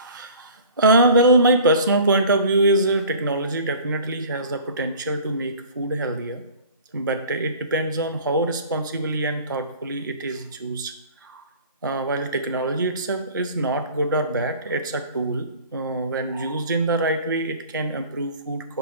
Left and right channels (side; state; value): both; inverted; correlation -0.45